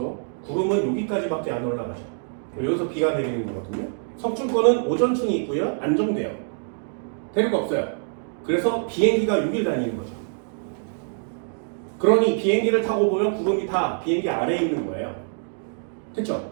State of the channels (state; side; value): silent; left; digital silence